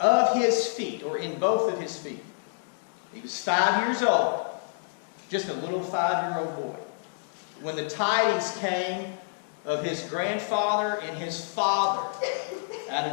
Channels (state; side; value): silent; right; digital silence